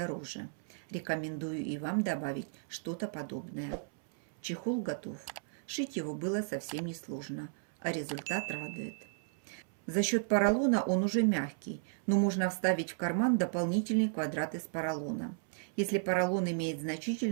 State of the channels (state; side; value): silent; left; 55 dB below the other